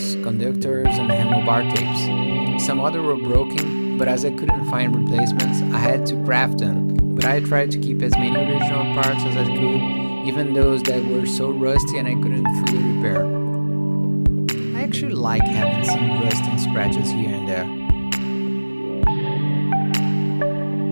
conductors, and handlebar tapes. Some other were broken, but as I couldn't find replacements, I had to craft them. But I tried to keep as many original parts as I could, even those that were so rusty and I couldn't fully repair. I actually like having some rust and scratches here and there.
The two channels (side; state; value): both; inverted; correlation -1.00